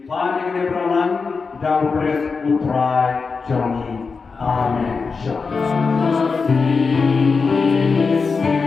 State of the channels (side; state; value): right; quieter; 4.8 dB